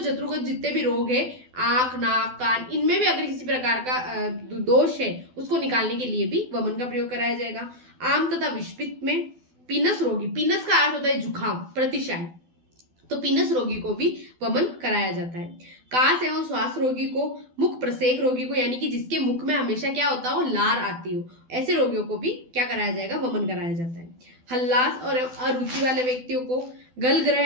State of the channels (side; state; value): left; late; 12 ms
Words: जत्रुगत जितने भी रोग है, आंख, नाक, कान, इनमें भी अगर किसी प्रकार का दोष है उसको निकालने के लिए भी वमन का प्रयोग कराया जाएगा। आम तथा विषपित्त में पीनस रोगी, पीनस का अर्थ होता है जुखाम, प्रतिशाय, तो पीनस रोगी को भी वमन कराया जाता है। कास एवं श्वास रोगी को, मुख प्रसेक रोगी को, यानी कि जिसके मुख में हमेशा क्या होता हो, लार आती हो, ऐसे रोगियों को भी क्या कराया जाएगा, वमन कराया जाता है। हल्लास और अरुचि वाले व्यक्तियों को, गल ग्रह